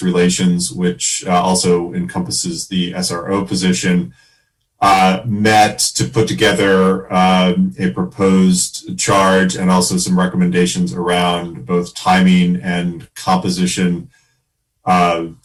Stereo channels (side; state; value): both; identical; correlation 1.00